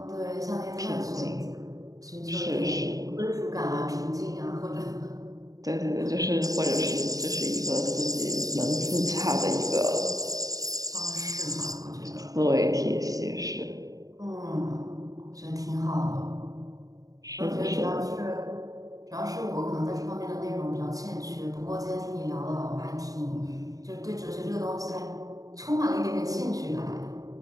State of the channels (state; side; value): late; left; 0.17 ms